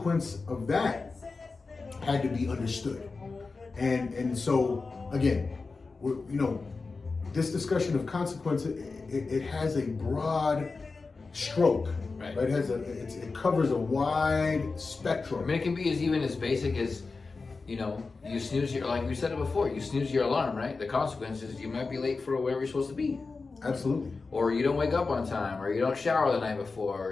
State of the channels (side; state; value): right; quieter; 4.1 dB